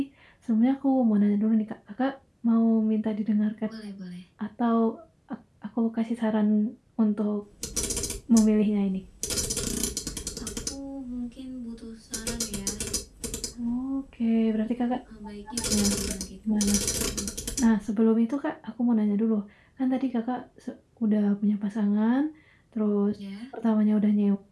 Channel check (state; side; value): identical; both; correlation 1.00